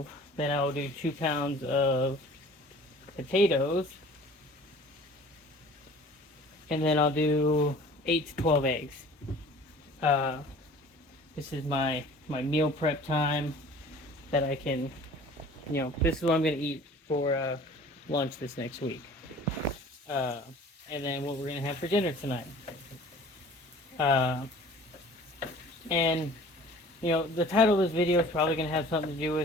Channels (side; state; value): both; normal; correlation 0.47